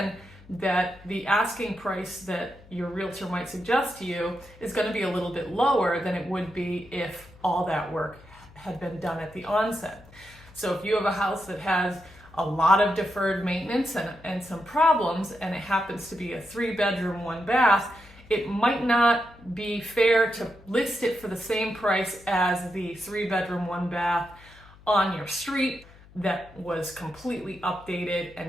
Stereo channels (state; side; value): noise; left; hum, 23 dB below the sound